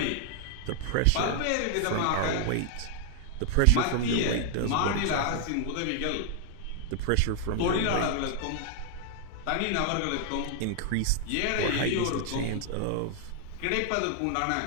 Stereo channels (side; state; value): both; different; correlation 0.00